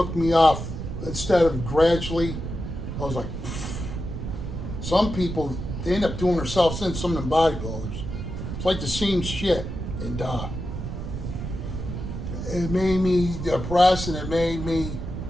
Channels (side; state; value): right; noise; rumble, 6 dB below the sound